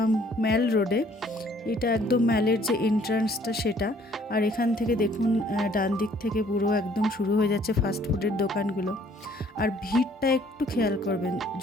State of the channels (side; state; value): both; normal; correlation 0.60